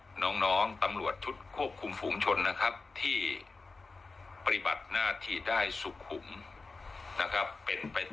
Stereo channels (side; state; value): right; quieter; 3.9 dB